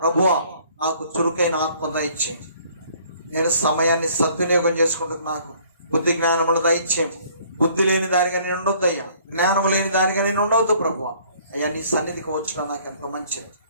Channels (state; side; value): inverted; both; correlation -0.59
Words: నాకు చురుకైన ఆత్మ దయచేయండి. నేను సమయాన్ని సద్వినియోగం చేసుకుంటూ నాకు బుద్ధి జ్ఞానములు దయచేయండి. బుద్ధి లేని దానిగా నేను ఉండొద్దు అయ్యా, జ్ఞానము లేని దానిగా నేను ఉండవద్దు ప్రభువా. అయ్యా నీ సన్నిధికి వచ్చడం నాకు ఎంతో మంచిది